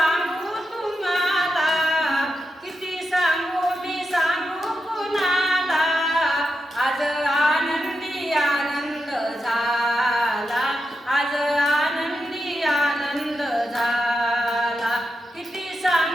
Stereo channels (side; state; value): both; normal; correlation 0.87